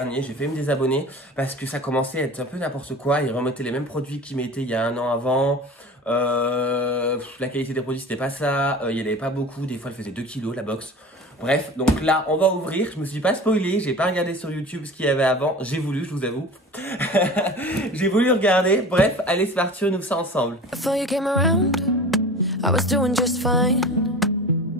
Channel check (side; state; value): both; normal; correlation 0.37